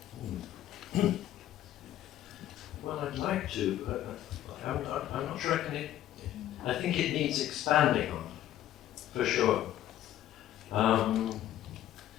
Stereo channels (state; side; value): quieter; right; 12.7 dB